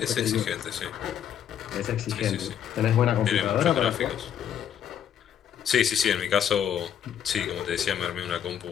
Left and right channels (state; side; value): quieter; right; 9.4 dB